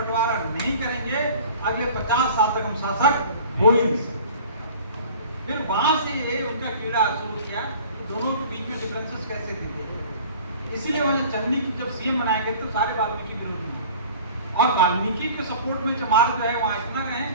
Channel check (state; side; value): inverted; both; correlation -0.45